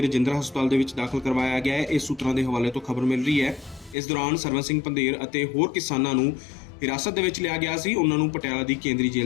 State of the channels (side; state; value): right; drops out; at 4.0 s